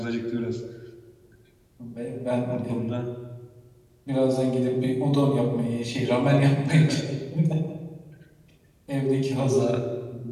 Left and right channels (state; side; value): identical; both; correlation 1.00